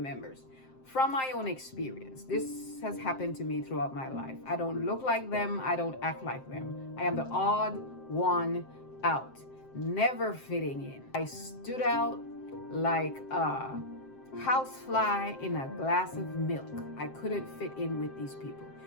From my own experience, this has happened to me throughout my life. I don't look like them, I don't act like them. I am the odd one out, never fitting in. I stood out like a housefly in a glass of milk. I couldn't fit in with these people.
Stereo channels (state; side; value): late; right; 7.6 ms